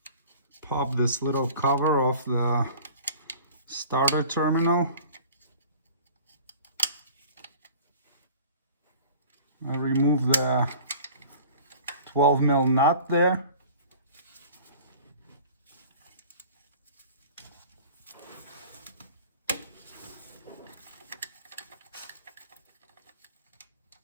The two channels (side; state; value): both; inverted; correlation -0.44